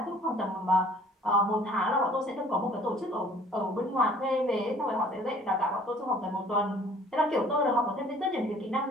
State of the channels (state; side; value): normal; both; correlation 0.54